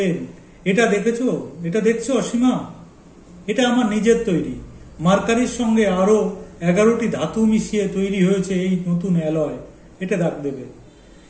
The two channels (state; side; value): identical; both; correlation 1.00